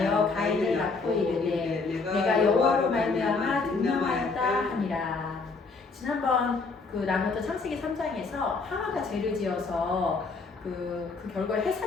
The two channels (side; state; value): right; quieter; 4.1 dB